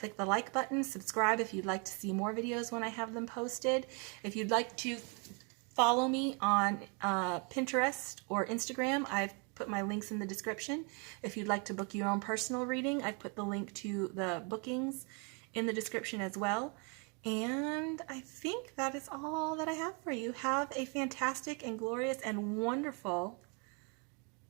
the like button. Subscribe if you'd like to see more videos when I have them posted. If you'd like to follow me on Pinterest or Instagram, I've put my links in the description. If you'd like to book your own personal reading, I've put the link to the bookings in the description as well. And I think that is all that I have for you. Have a fantastic and glorious and wonderful,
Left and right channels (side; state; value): left; quieter; 35.2 dB